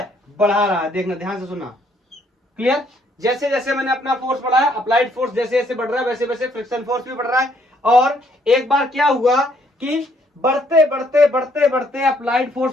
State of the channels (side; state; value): both; normal; correlation 0.67